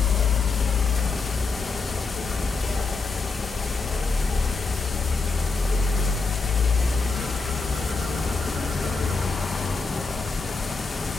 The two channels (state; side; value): quieter; right; 4.2 dB